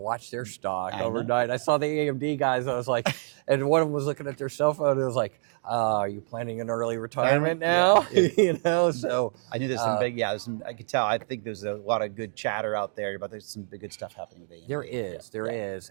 their stock overnight. I saw the AMD guys. I was like, and one of them was looking at their cell phone. And it was like, are you planning an early retirement now? Yeah. So I knew there's some big, I could tell. I think there's a lot of good chatter out there about there's some good stuff happening with AMD. There is.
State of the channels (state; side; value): silent; left; 58 dB below the other